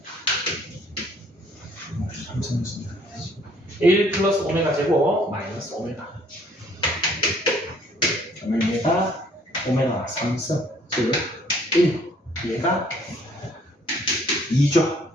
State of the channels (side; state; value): both; normal; correlation 0.61